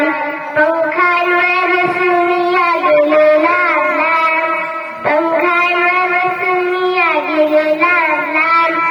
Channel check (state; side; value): identical; both; correlation 1.00